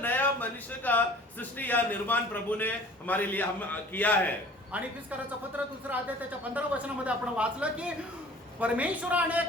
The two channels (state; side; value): normal; both; correlation 0.47